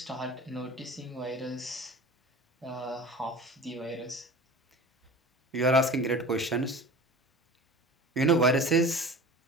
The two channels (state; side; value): normal; both; correlation 0.37